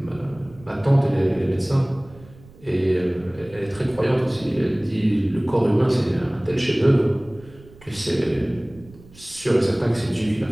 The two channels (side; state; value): right; noise; rumble, 23 dB below the sound